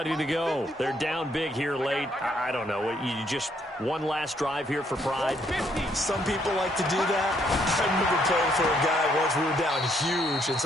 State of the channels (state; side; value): normal; both; correlation 0.71